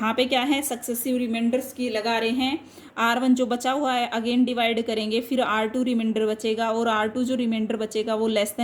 पे क्या है सक्सेसिव रिमाइंडर्स की लगा रहे हैं, R1 जो बचा हुआ है अगेन डिवाइड करेंगे, फिर R2 रिमाइंडर बचेगा और R2 जो रिमाइंडर बचेगा वो लेस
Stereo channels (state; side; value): identical; both; correlation 1.00